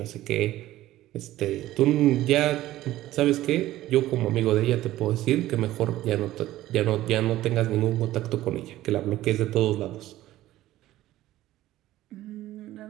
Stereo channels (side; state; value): left; quieter; 15.1 dB